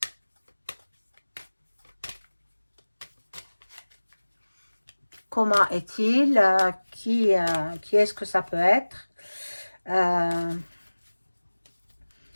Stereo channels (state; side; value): inverted; both; correlation -1.00